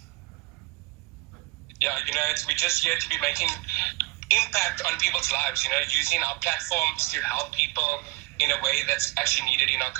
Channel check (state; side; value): quieter; left; 23.3 dB